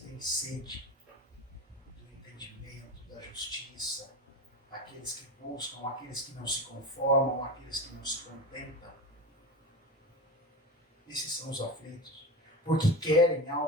têm sede do entendimento, da justiça, aqueles que buscam, aqueles que não se conformam, aqueles que não se contentam. Esses são os aflitos, porque querem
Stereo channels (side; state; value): both; normal; correlation 0.26